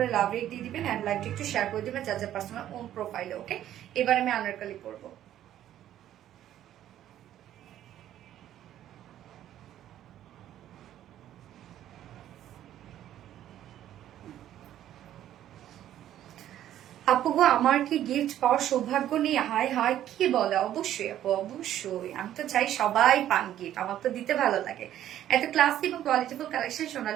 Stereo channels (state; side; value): quieter; left; 11.9 dB